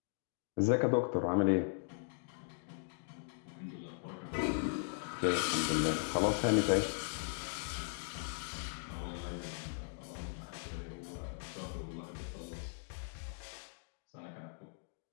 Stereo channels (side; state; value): right; silent; digital silence